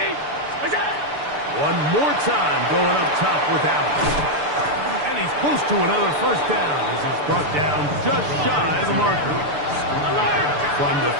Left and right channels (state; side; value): late; left; 6.8 ms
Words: What's that? One more time going up top with Allen. And he's close to another first down as he's brought down just shy of the marker. From the